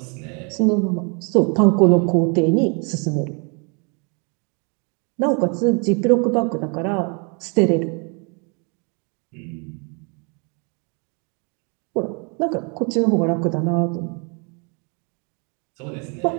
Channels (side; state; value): left; quieter; 35.1 dB